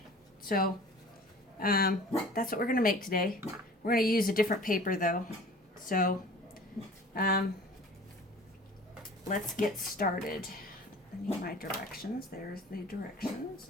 So that's what we're going to make today. We're going to use a different paper though. So let's get started. I need my directions. There's the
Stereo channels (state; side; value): normal; both; correlation 0.44